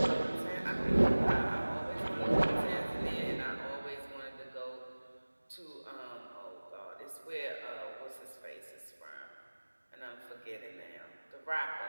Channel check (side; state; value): both; inverted; correlation -1.00